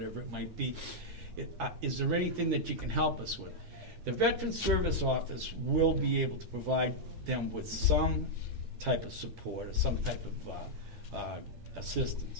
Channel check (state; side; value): late; left; 9.8 ms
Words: it might be. Is there anything that you can help us with? The Veteran Service Office will be able to provide them with some type of support or some type of